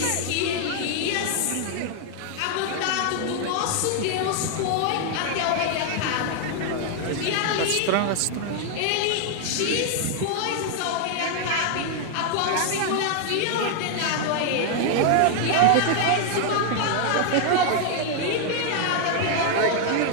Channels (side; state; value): both; different; correlation 0.00